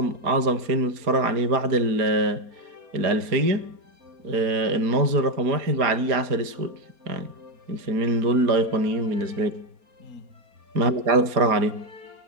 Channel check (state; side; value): late; left; 4.3 ms